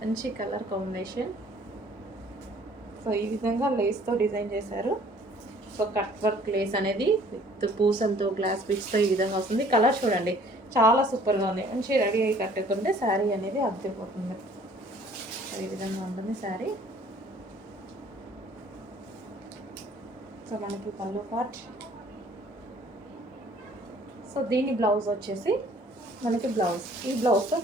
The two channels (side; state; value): both; normal; correlation 0.56